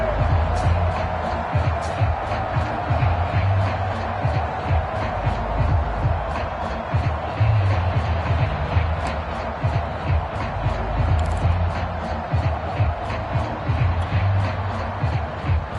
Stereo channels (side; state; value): both; identical; correlation 1.00